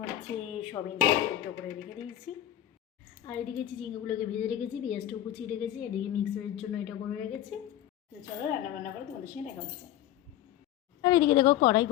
সবিন সেদ্ধ করে রেখে দিয়েছি। আর এদিকে চিচিঙ্গাগুলোকে ভেজে রেখেছি, পেঁয়াজটাও কুচিয়ে রেখেছি। এদিকে মিক্সারের জন্য এটা করে রেখেছি। তো চলো রান্না করে তোমাদের সঙ্গে দেখা হচ্ছে। আর এদিকে দেখো কড়াই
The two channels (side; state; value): right; quieter; 12.3 dB